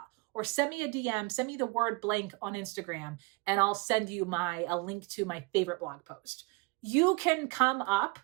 Or send me a DM, send me the word blank on Instagram, and I'll send you a link to my favorite blog post. You can come up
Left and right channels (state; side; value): quieter; left; 28.0 dB